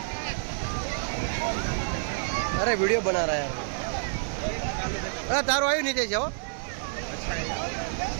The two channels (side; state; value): left; silent; digital silence